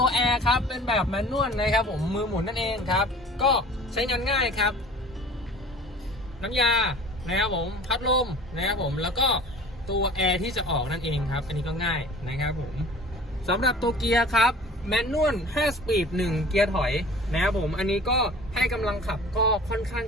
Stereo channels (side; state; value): both; normal; correlation 0.44